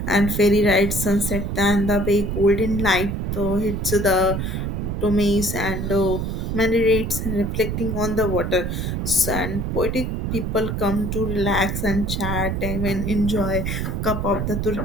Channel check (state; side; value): noise; right; rumble, 2 dB below the sound